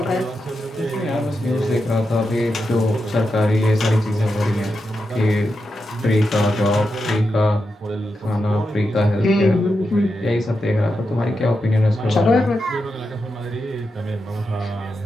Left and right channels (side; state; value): both; normal; correlation 0.87